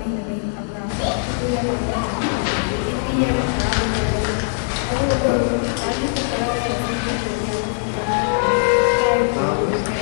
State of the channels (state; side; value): silent; right; digital silence